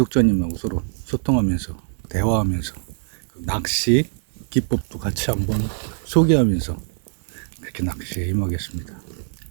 서로 소통하면서 대화하면서 낚시 기법도 같이 한번 소개하면서 그렇게 낚시에 임하겠습니다.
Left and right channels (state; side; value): silent; left; 64 dB below the other